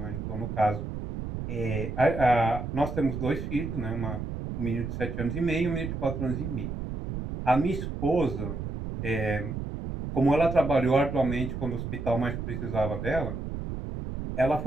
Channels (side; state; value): right; noise; rumble, 5 dB below the sound